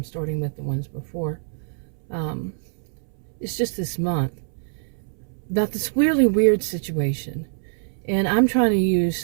starting with, the ones before. It's just this month about this really weird situation, and I'm trying to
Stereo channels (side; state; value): left; silent; 62 dB below the other